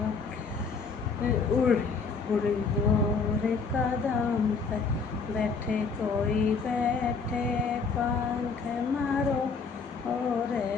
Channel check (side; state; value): right; quieter; 4.9 dB